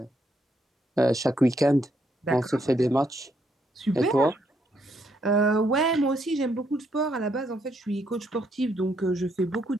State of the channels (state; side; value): normal; both; correlation 0.74